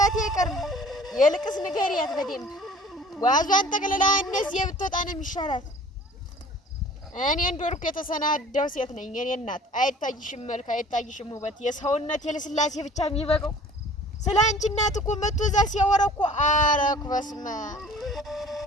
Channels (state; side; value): normal; both; correlation 0.48